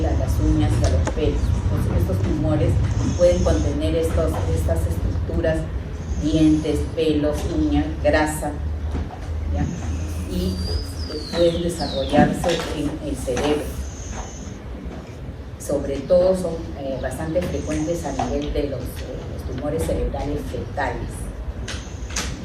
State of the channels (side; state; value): both; identical; correlation 1.00